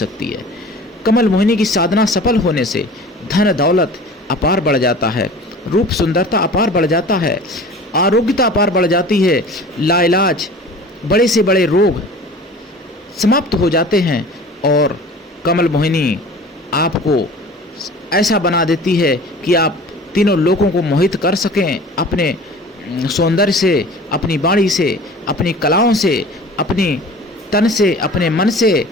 है। कमल मोहिनी की साधना सफल होने से धन दौलत अपार बढ़ जाता है, रूप सुंदरता अपार बढ़ जाता है, आरोग्यता अपार बढ़ जाती है, लाइलाज बड़े से बड़े रोग समाप्त हो जाते हैं। और कमल मोहिनी आपको ऐसा बना देती है कि आप तीनों लोगों को मोहित कर सकें अपने सौंदर्य से, अपनी वाणी से, अपनी कलाओं से, अपनी तन से, अपने मन से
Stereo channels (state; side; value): normal; both; correlation 0.41